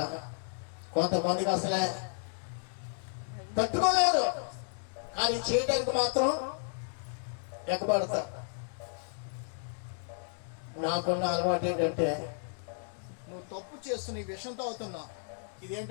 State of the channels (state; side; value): silent; right; digital silence